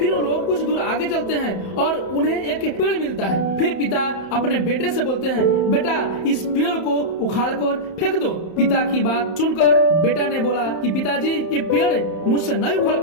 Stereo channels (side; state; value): right; late; 31 ms